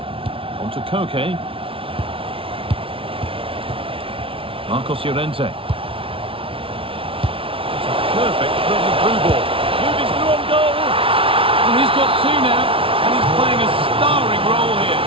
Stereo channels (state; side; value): late; left; 0.26 ms